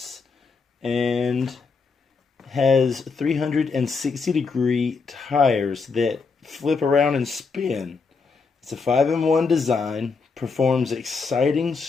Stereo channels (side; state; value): right; quieter; 4.8 dB